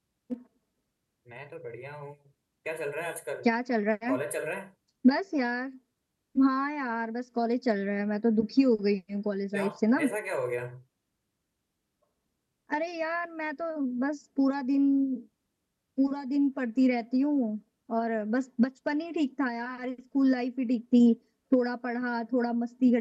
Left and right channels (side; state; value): both; identical; correlation 1.00